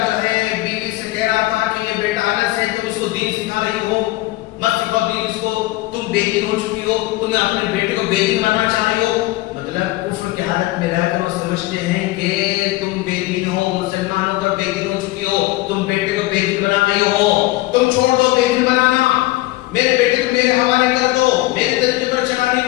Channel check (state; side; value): quieter; right; 18.7 dB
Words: ہے بیوی سے کہہ رہا تھا کہ یہ بیٹا انس ہے, تم اس کو دین سکھا رہی ہو, مت سکھاؤ دین اس کو, تم بے دین ہو چکی ہو, تم اپنے بیٹے کو بے دین بنانا چاہ رہی ہو. مطلب کفر کی حالت میں رہ کر وہ سمجھتے ہیں کہ تم بے دین ہو, مسلمان ہو کر بے دین ہو چکی ہو, تم بیٹے کو بے دین بنا رہی ہو, تم چھوڑ دو بے دین بنانا, میرے بیٹے کو میرے حوالے کر دو, میرے طریقے پر چلانے